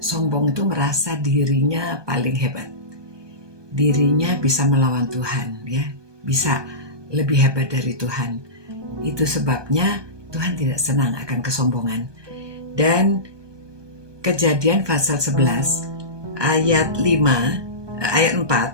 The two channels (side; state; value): left; late; 1.2 ms